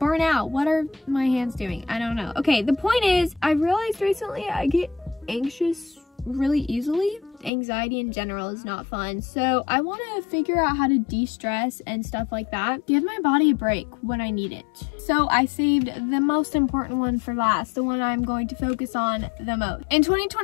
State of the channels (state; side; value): drops out; right; at 7.5 s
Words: out. What are my hands doing? I don't know. Okay, the point is, I realized recently I get anxious really easily. anxiety in general is not fun. So I want to figure out how to de-stress and stuff like that. Give my body a break when I need it. So I saved the most important one for last, the one I'm going to focus on the most. In